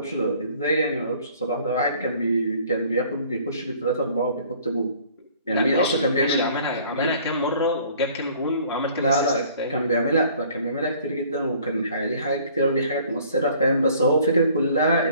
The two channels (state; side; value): inverted; both; correlation -0.55